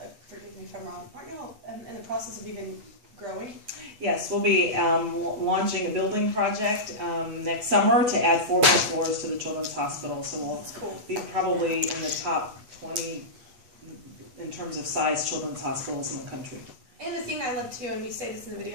forgive me if I'm wrong, aren't y'all in the process of even growing? Yes, we'll be launching a building project next summer to add 4 more floors to the children's hospital. So we'll be probably in the top 20 in terms of size children's hospitals in the country. And the thing I love too, and we say this in the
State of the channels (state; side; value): late; left; 8.3 ms